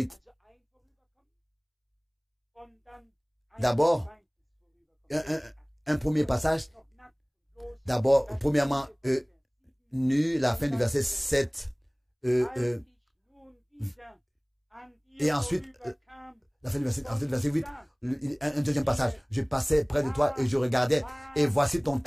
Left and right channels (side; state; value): both; identical; correlation 1.00